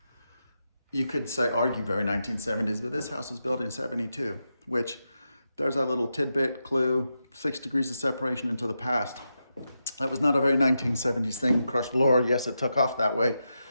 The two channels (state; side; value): inverted; both; correlation -0.87